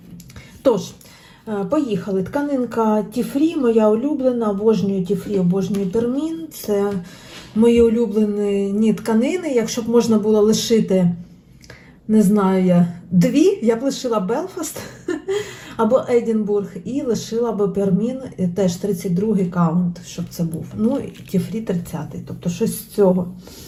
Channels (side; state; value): both; identical; correlation 1.00